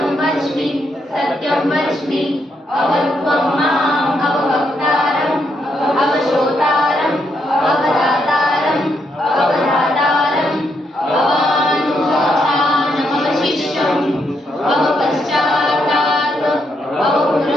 वच्मि सत्यं वच्मि अवत्वं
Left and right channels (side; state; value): both; normal; correlation 0.78